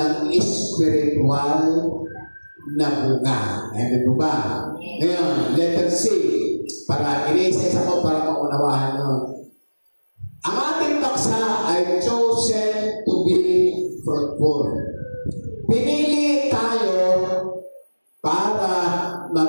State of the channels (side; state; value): both; inverted; correlation -1.00